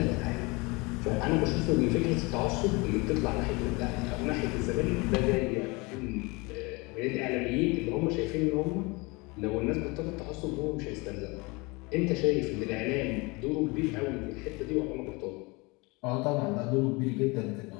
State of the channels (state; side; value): quieter; right; 26.2 dB